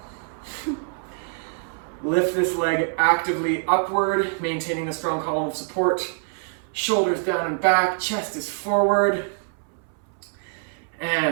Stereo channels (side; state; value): left; silent; 61 dB below the other